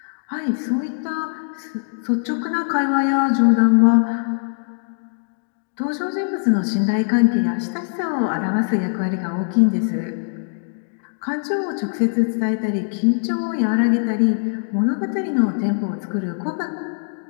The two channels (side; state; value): right; silent; 65 dB below the other